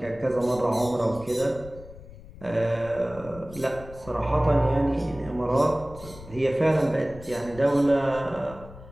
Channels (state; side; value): noise; left; rumble, 17 dB below the sound